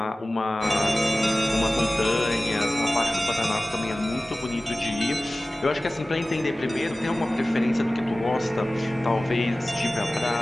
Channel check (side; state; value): both; normal; correlation 0.97